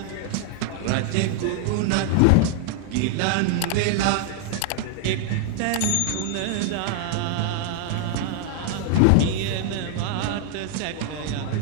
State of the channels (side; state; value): both; different; correlation 0.00